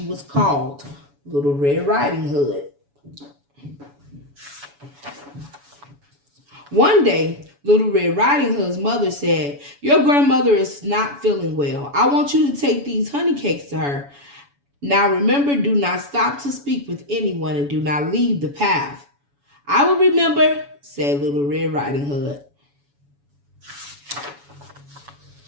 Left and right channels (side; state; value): left; late; 7.1 ms